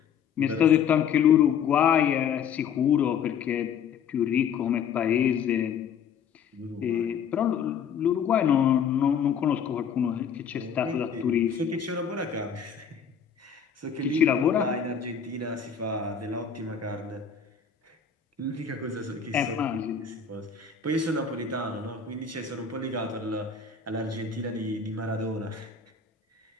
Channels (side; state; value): right; quieter; 7.1 dB